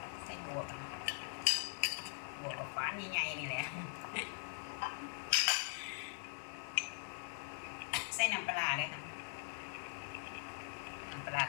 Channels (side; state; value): right; silent; digital silence